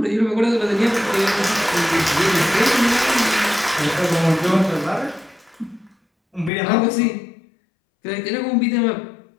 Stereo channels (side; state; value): right; drops out; at 6.5 s